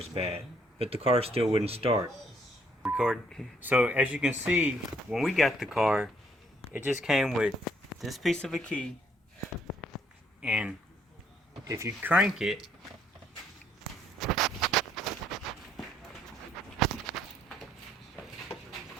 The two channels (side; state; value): both; normal; correlation 0.67